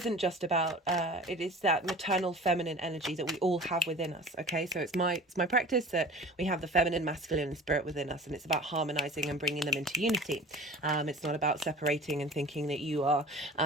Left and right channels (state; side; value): normal; both; correlation 0.40